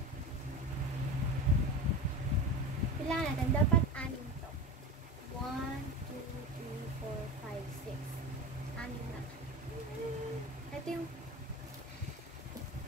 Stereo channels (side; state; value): both; normal; correlation 0.28